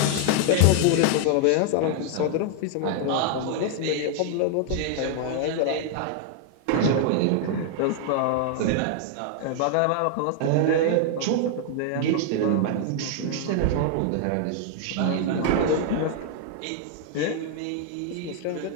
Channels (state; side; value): different; both; correlation 0.00